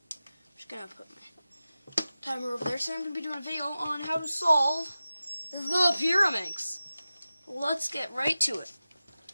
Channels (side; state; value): both; inverted; correlation -0.95